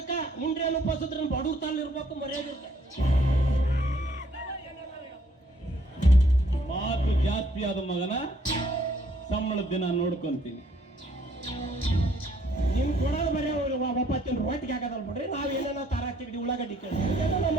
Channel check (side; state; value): both; normal; correlation 0.65